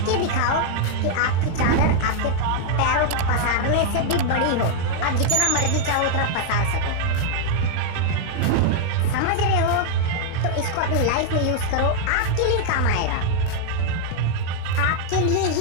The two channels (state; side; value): different; both; correlation 0.00